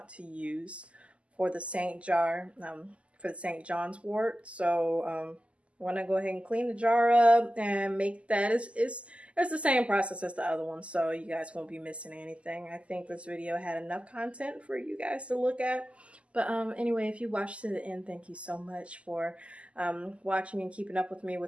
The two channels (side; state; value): left; late; 0.058 ms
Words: to use for the St. John's wort. So want to go ahead and clean the jar up and make that. It's the same process as the other one, so you guys won't be missing anything. I think this video had enough content for you guys to look at. But anyway, if you watched to the end, thank you so much for watching and keeping up with me